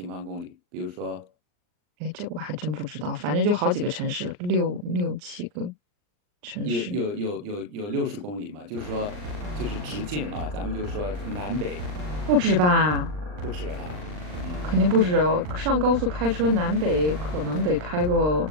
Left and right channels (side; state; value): left; late; 39 ms